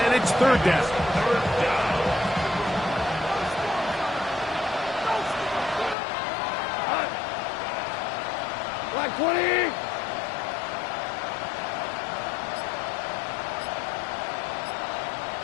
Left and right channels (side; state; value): right; drops out; at 6.0 s